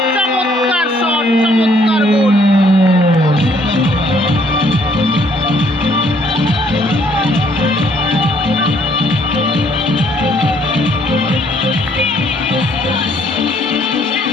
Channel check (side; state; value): both; normal; correlation 0.65